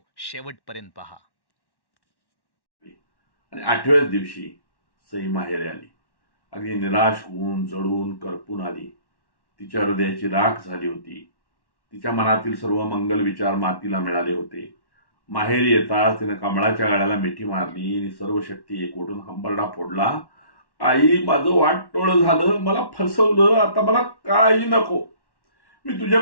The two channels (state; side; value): late; right; 1.1 ms